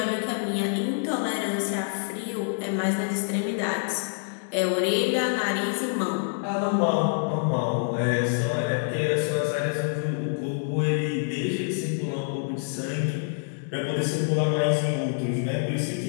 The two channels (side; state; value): right; silent; digital silence